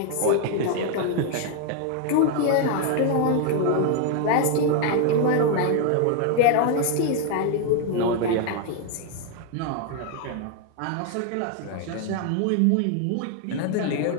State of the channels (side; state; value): both; different; correlation 0.00